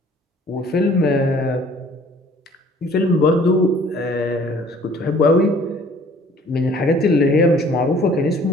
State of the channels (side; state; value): both; normal; correlation 0.54